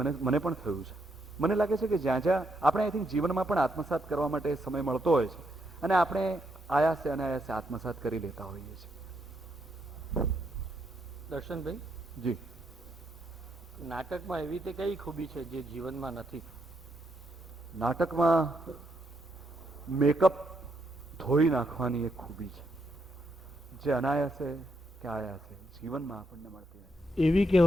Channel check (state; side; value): normal; both; correlation 0.78